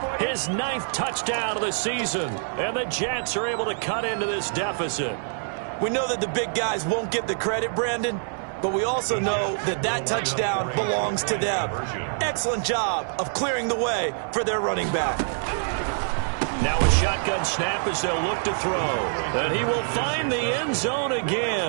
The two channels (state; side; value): silent; left; digital silence